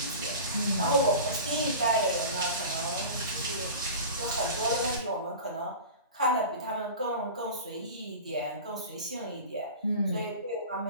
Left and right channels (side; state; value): both; inverted; correlation -0.34